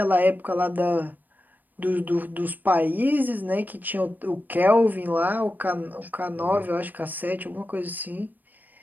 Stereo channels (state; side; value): late; left; 0.087 ms